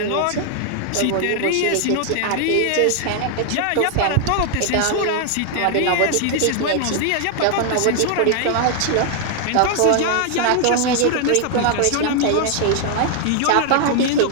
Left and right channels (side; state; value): both; different; correlation 0.00